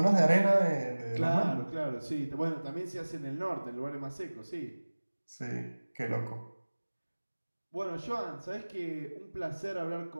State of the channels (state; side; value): inverted; both; correlation -1.00